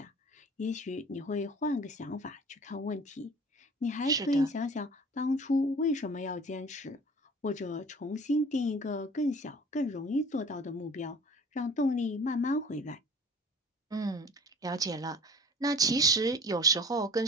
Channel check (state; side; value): normal; both; correlation 0.45